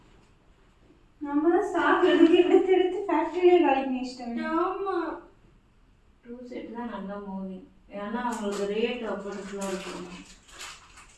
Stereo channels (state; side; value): identical; both; correlation 1.00